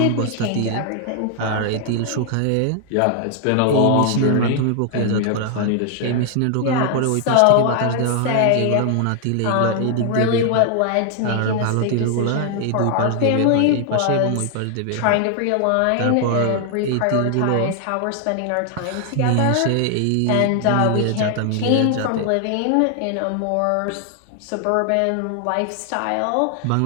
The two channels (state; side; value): different; both; correlation 0.00